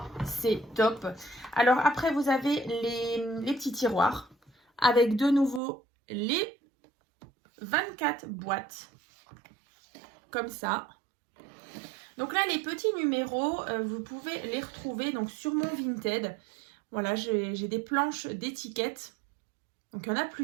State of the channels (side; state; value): left; drops out; at 5.6 s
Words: c'est top. Alors après, vous avez les petits tiroirs avec de nouveau les 24 boîtes. Comme ça. Donc là, les petits numéros, vous pouvez les retrouver donc sur mon Vinted. Voilà, j'ai des planches d'étiquettes. Donc il y en a